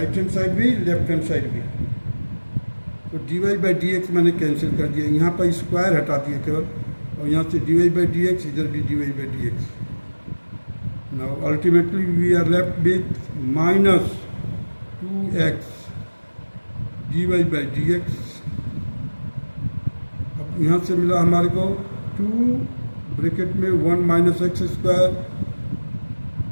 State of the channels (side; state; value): both; inverted; correlation -1.00